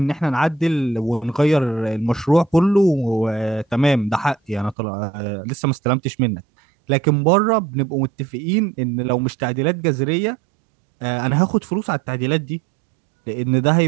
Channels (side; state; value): left; drops out; at 4.8 s